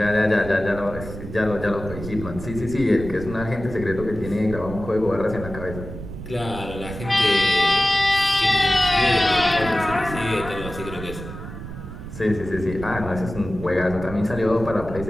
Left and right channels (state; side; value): noise; right; rumble, 10 dB below the sound